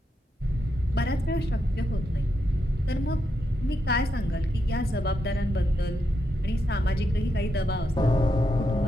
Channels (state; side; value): normal; both; correlation 0.83